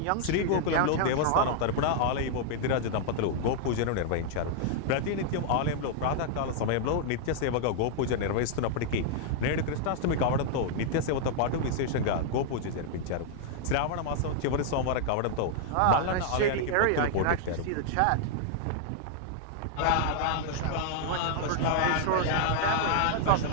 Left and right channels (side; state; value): both; different; correlation -0.01